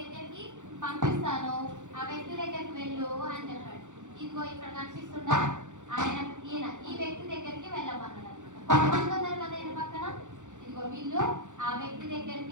పంపిస్తాను, ఆ వ్యక్తి దగ్గరికి వెళ్ళు అని చెప్పాడు. ఇదిగో ఇక్కడ కనిపిస్తుందా ఈ వ్యక్తి దగ్గరికి వెళ్ళమన్నాడు అనమాట. కొంతమంది ఉన్నారు కదా ఈయన పక్కన, ఇదిగో వీళ్ళు ఆ వ్యక్తి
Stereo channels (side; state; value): left; late; 0.85 ms